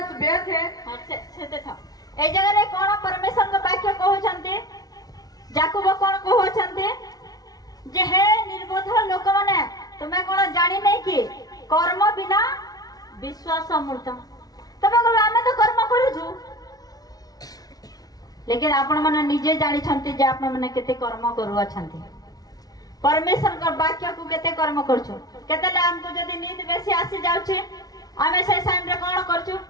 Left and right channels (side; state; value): right; late; 0.18 ms